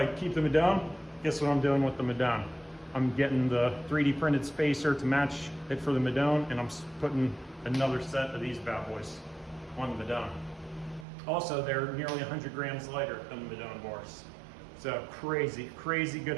keep the Madone, guess what I'm doing with the Madone? I'm getting the 3D printed spacer to match it for the Madone, and I'm putting another set of these bad boys on the Madone. Also, they're nearly 100 grams lighter than the Madone bars. So crazy, crazy good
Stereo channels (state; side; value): drops out; left; at 11.1 s